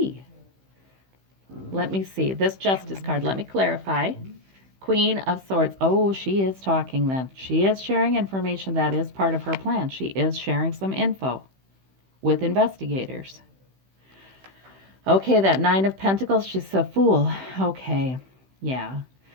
Let me see. This Justice card, let me clarify. Queen of Swords. Oh, she is talking then. She is sharing information that is part of her plan. She is sharing some info with investigators. Okay, that Nine of Pentacles, she's a fool. Okay, yeah.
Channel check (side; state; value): left; late; 15 ms